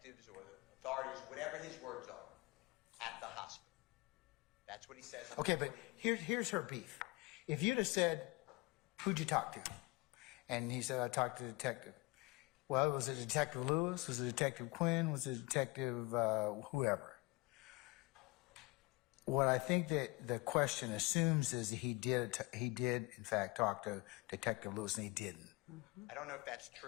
or the authorities, whatever his words are, at the hospital. That's what he says. Okay, but here's her beef. If you'd have said, who'd you talk to? And he said, I talked to the detective. Well, was it Detective Lewis? Was it Detective Quinn? Was it Detective whoever? What I think that the question assumes is that he did in fact talk to Detective Lewis, and he didn't. I don't know if that's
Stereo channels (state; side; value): quieter; right; 24.0 dB